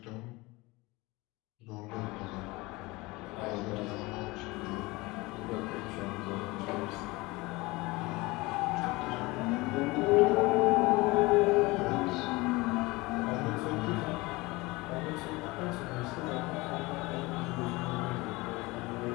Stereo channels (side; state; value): right; quieter; 22.6 dB